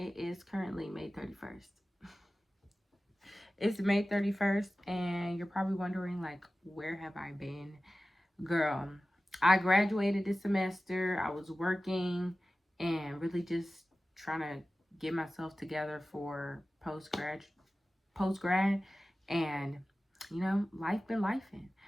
is currently May 31st. It's May 31st, and you're probably wondering, like, where have I been? Girl, I graduated this semester. I was working and really just trying to get myself together for post-grad, and you know, life been lifing.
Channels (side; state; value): both; normal; correlation 0.96